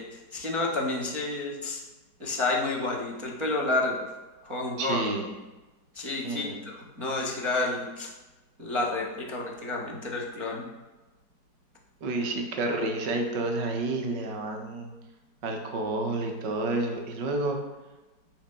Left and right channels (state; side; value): late; left; 4.5 ms